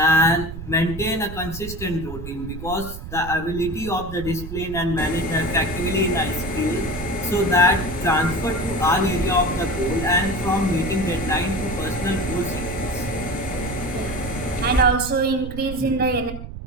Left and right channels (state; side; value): noise; right; rumble, 10 dB below the sound